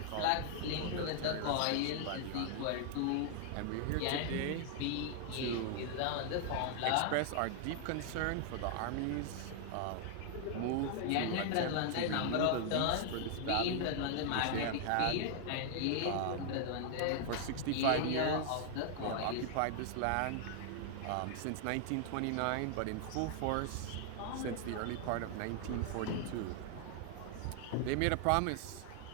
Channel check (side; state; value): both; different; correlation 0.00